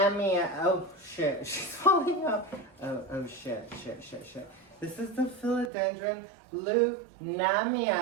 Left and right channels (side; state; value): left; drops out; at 5.7 s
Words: Oh shit, she's falling off. Oh shit. This is the Philodendron